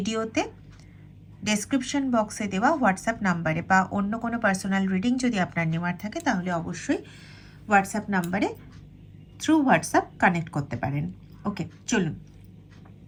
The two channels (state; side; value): identical; both; correlation 1.00